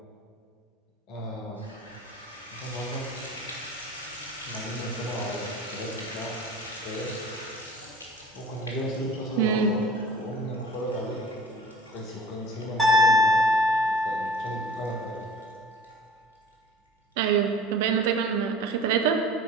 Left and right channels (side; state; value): both; normal; correlation 0.43